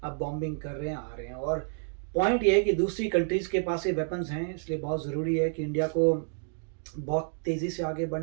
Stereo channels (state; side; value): silent; left; digital silence